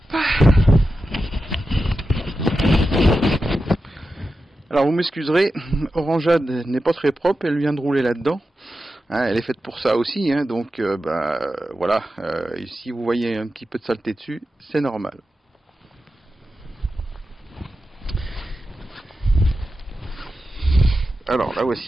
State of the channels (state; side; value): normal; both; correlation 0.91